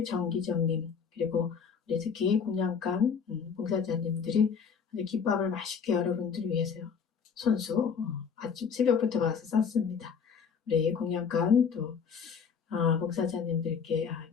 정기정님, 그리고 우리 특히 공양간 봉사자님들이 김밥을 맛있게 여러분들을 위해서 손수 아침 새벽부터 와서 쌌습니다. 우리 공양간 또 봉사자님들께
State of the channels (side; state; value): right; quieter; 6.3 dB